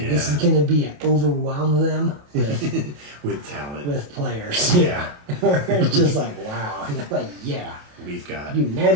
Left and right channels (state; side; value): late; left; 28 ms